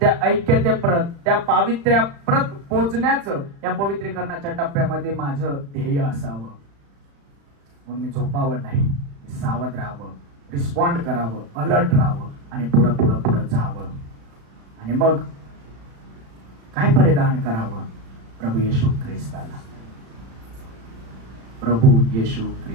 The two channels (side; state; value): left; late; 35 ms